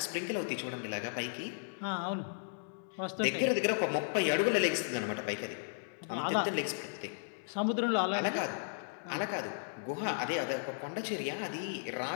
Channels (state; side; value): silent; right; 54 dB below the other